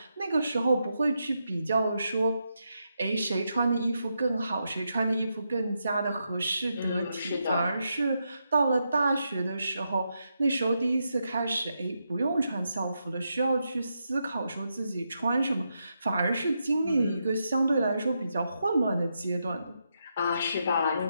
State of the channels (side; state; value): both; inverted; correlation -0.84